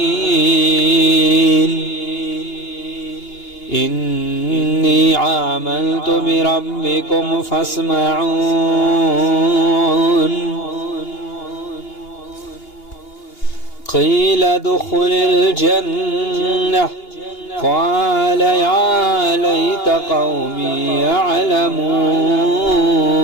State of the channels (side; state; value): right; late; 2.8 ms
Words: إني آمنت بربكم فاسمعون قيل ادخل الجنة قال يا ليت قومي يعلمون